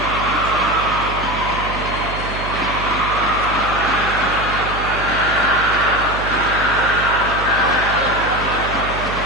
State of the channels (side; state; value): right; noise; hum, 8 dB below the sound